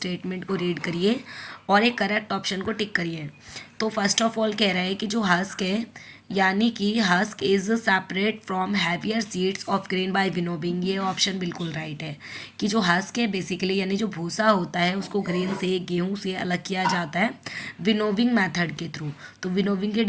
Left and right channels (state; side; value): identical; both; correlation 1.00